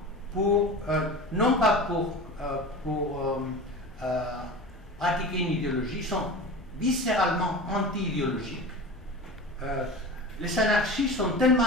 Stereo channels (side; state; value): both; normal; correlation 0.32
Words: pour pratiquer une idéologie, ils sont viscéralement anti-idéologiques. Les anarchistes sont tellement